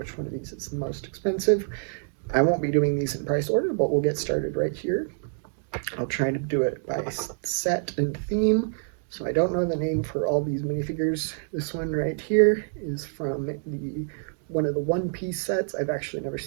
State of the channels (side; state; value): left; silent; digital silence